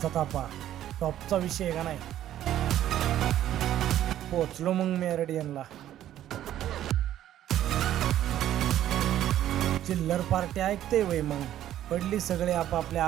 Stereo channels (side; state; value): left; quieter; 12.1 dB